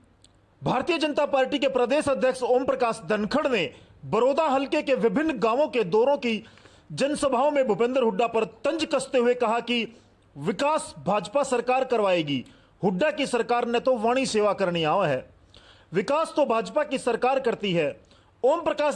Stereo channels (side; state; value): both; identical; correlation 1.00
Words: भारतीय जनता पार्टी के प्रदेश अध्यक्ष ओम प्रकाश धनखड़ ने बड़ौदा हलके के विभिन्न गांवों के दौरों की जनसभाओं में भूपेंद्र हुड्डा पर तंज कसते हुए कहा कि विकास भाजपा सरकार करवाएगी, हुड्डा की सरकार ने तो वाणी सेवा करनी आवा है, विकास तो भाजपा की सरकार करती है। ओम प्रकाश